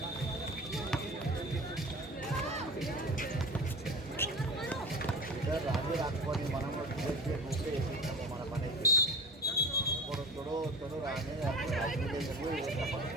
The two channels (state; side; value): normal; both; correlation 0.34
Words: రాజు రాకపోయి మనం వేసినాము మన పని అయితే ఇప్పుడు తొడు రాని